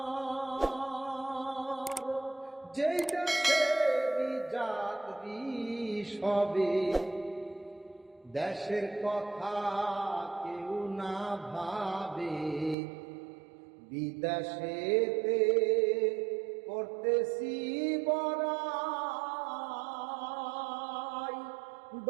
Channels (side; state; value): left; drops out; at 12.8 s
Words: যেই দেশেরই যাত্রী সবে, দেশের কথা কেউ না ভাবে, বিদেশেতে করতেছি বড়াই,